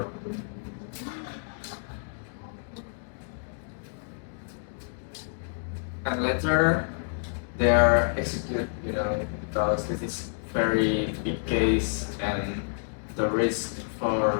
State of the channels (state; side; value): silent; right; digital silence